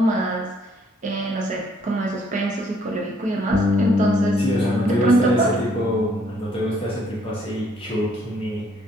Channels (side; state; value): both; normal; correlation 0.65